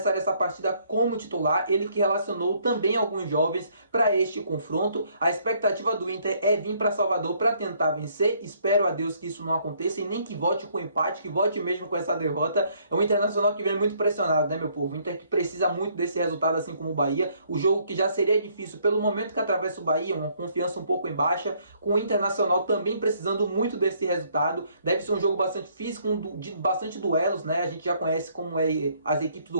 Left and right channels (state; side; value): inverted; both; correlation -0.66